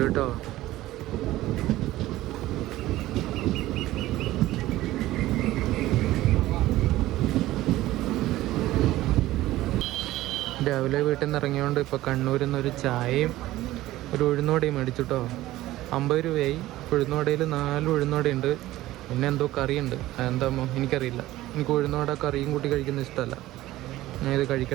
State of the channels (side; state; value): left; quieter; 16.1 dB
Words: കേട്ടോ. രാവിലെ വീട്ടിൽ നിന്ന് ഇറങ്ങിയോണ്ട് ഇപ്പോൾ കണ്ണൂരിൽ നിന്നൊരു ചായയും ഒരു ഉഴുന്നോടയും മേടിച്ചു കേട്ടോ. 50 രൂപയായി. ഉഴുന്നോടയിൽ 4 ഉഴുന്നോടയുണ്ട്, പിന്നെ എന്തോ കറിയുണ്ട്. അതെന്താമോ എനിക്കറിയില്ല. എനിക്ക് ഉഴുന്നോട കറിയും കൂട്ടി കഴിക്കുന്നത് ഇഷ്ടമല്ല. ഞാൻ ഇത്